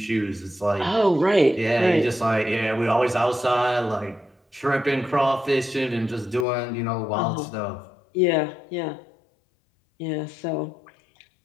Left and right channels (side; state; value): right; drops out; at 6.5 s